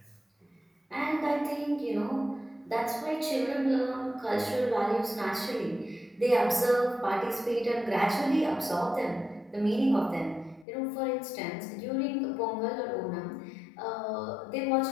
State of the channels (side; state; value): right; drops out; at 10.7 s